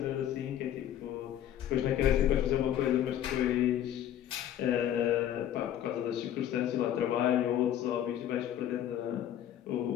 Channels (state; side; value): quieter; right; 11.1 dB